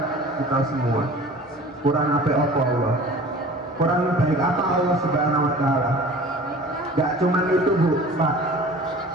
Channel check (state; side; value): normal; both; correlation 0.43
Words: kita semua. Kurang apa Allah? Kurang baik apa Allah Subhanahu Wa Taala? Gak cuman itu, Bu, Pak.